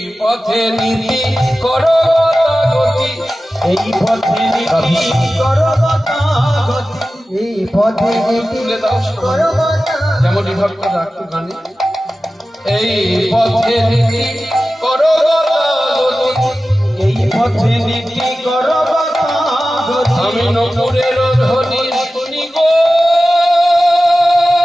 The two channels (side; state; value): both; normal; correlation 0.95